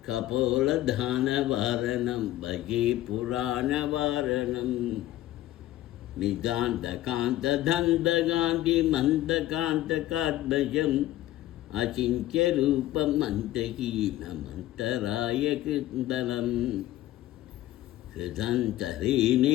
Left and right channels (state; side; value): quieter; right; 14.8 dB